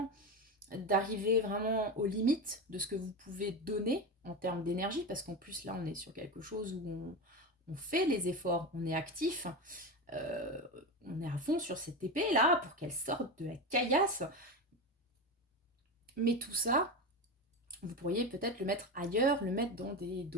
d'arriver vraiment aux limites de ce que vous pouvez donner en termes d'énergie, parce qu'en plus, là, on est sur quelque chose où on fait les efforts, on est actif. On est à fond sur cette épée là pour qu'elle sorte de la caillasse. Mais tout ça, vous pourriez peut-être le mettre ailleurs, le mettre dans des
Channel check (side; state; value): both; normal; correlation 0.19